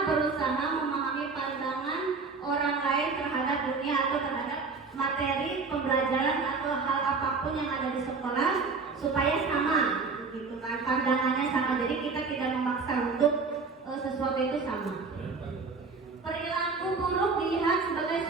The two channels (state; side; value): quieter; left; 4.5 dB